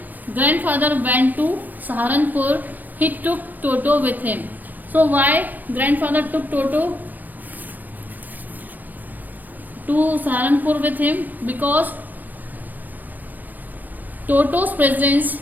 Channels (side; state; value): left; late; 0.084 ms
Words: grandfather went to Saharanpur, he took Toto with him. So why grandfather took Toto to Saharanpur with him? Because Toto's